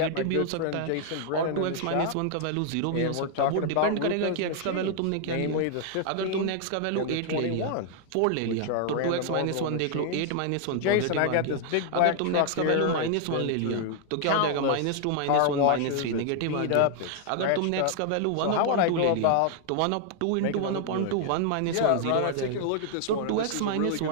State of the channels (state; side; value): different; both; correlation 0.00